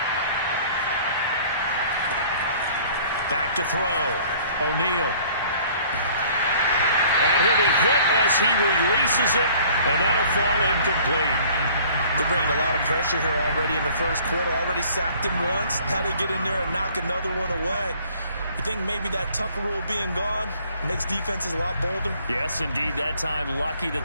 Back to throw. O'Neal. And he'll be hit as he releases it, and that'll fall incomplete. They're bringing a lot of pressure here already in the first quarter. Already sacked him once. How they get in there and knock another one away. You think maybe that Tucker rule being gone makes defenses a lot bolder? Yes, indeed. That time, lucky that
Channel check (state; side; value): inverted; both; correlation -0.54